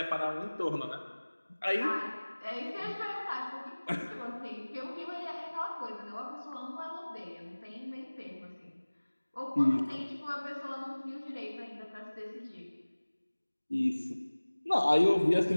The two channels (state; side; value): inverted; both; correlation -1.00